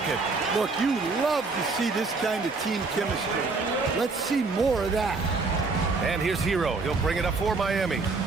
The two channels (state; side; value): quieter; left; 4.0 dB